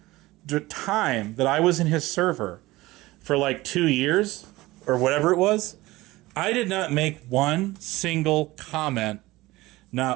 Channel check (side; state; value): left; quieter; 19.1 dB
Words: time that I was in his server for like 2 years or whatever it was, I did not make one single comment,